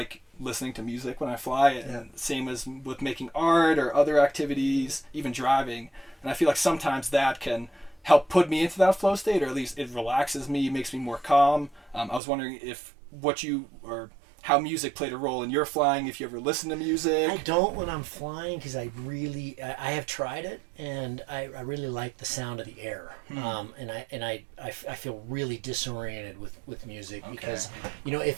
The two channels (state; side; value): drops out; left; at 12.2 s